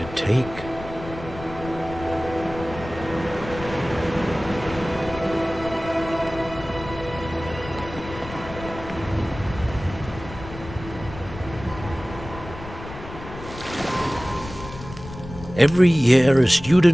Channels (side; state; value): left; noise; rumble, 13 dB below the sound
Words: take. Every year, a